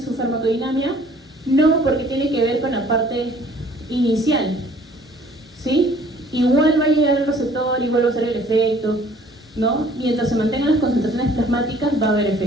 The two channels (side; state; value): both; normal; correlation 0.56